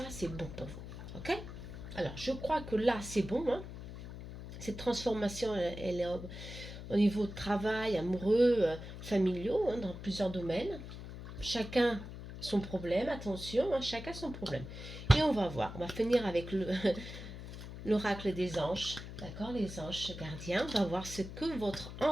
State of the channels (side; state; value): left; noise; hum, 11 dB below the sound